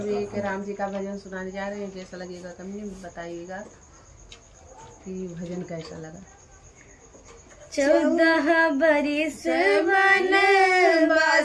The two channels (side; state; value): both; identical; correlation 1.00